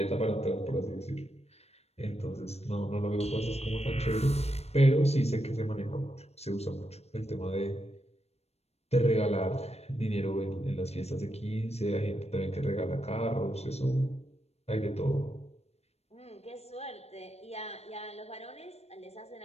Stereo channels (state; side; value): late; right; 0.31 ms